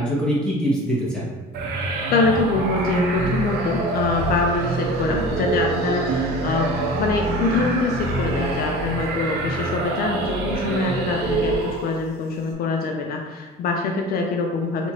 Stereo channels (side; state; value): both; normal; correlation 0.37